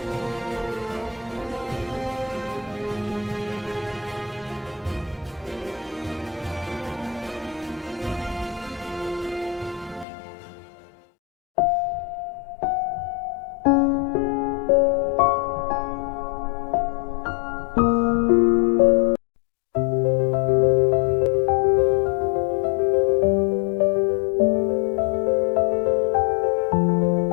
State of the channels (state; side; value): drops out; right; at 10.1 s